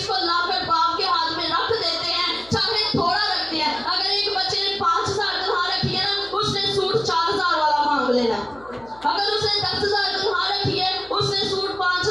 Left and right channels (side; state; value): left; noise; hum, 24 dB below the sound